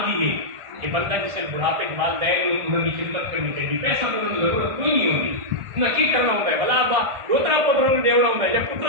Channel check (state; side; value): late; left; 1.5 ms